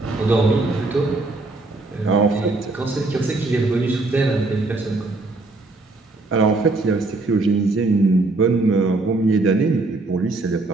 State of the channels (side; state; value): left; quieter; 3.2 dB